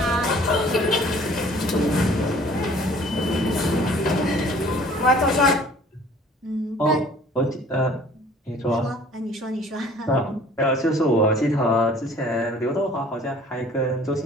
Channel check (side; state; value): both; normal; correlation 0.52